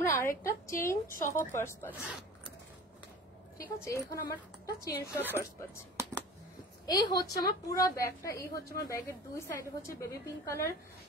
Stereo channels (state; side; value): normal; both; correlation 0.39